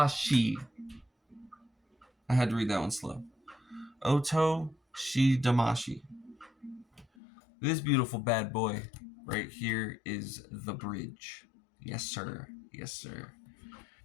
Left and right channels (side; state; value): right; drops out; at 7.1 s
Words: I had to read that one slow. Otoshi Damashi. This beautiful bad boy right here is the bridge. Yes, sir. Yes, sir.